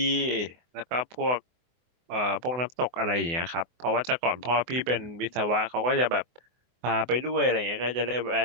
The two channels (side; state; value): left; late; 24 ms